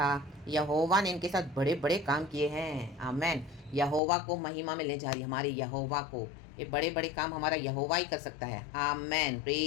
यहोवा ने इनके साथ बड़े बड़े काम किए हैं. आमेन. यहोवा को महिमा में ले जा रही हमारे यहोवा को. ये बड़े बड़े काम हमारा यहोवा ही कर सकता है. आमेन.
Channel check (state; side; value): drops out; right; at 4.0 s